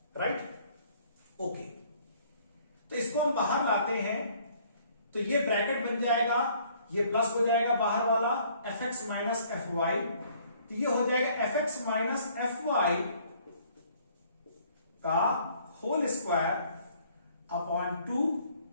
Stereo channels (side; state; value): both; inverted; correlation -0.60